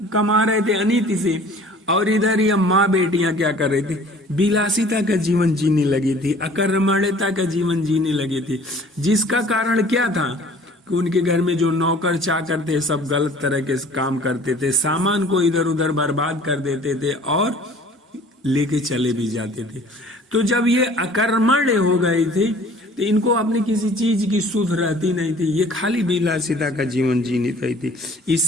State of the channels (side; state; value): both; normal; correlation 0.50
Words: कमा रहे थे अनीति से, और इधर ये माँ बेटियां क्या कर रही थी, विलासिता का जीवन जीने लगी थी, अकर्मण्यता का जीवन जीने लगी थी। जिसका कारण क्या था कि उनके घर में जो नौकर चाकर थे सब गलत तरह के काम करते थे, सामान को इधर उधर बर्बाद कर देते थे और लेके चले भी जाते थे। तो जब ये अकर्मण्य हो गई थी तो इनको अपनी किसी चीज की सुध रहती नहीं थी, ये खाली विलासिता का जीवन जीनी रही थी।